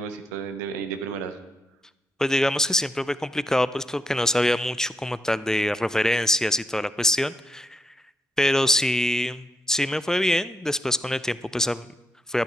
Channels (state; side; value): normal; both; correlation 0.79